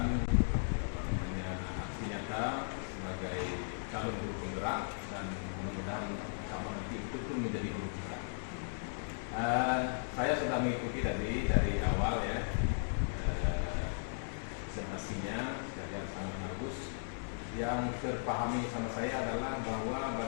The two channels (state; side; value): silent; right; 53 dB below the other